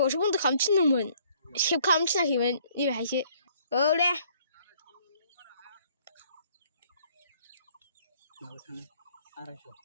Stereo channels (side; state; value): both; inverted; correlation -0.62